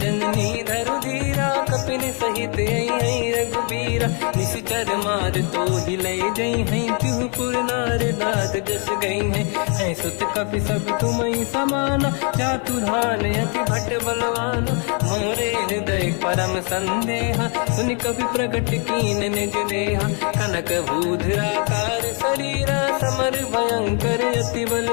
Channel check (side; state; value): right; quieter; 37.5 dB